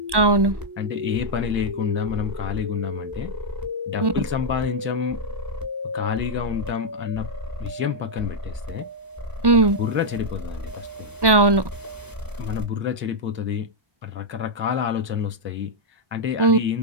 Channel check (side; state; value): left; late; 1.1 ms